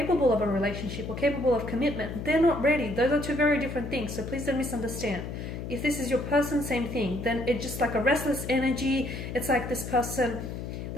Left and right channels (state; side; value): noise; left; hum, 7 dB below the sound